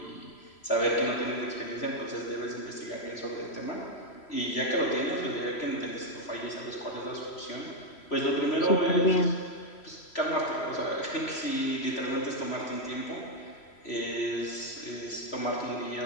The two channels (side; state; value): right; late; 3.0 ms